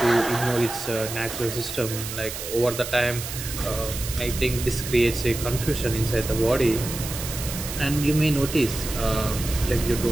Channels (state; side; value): noise; right; hiss, 8 dB below the sound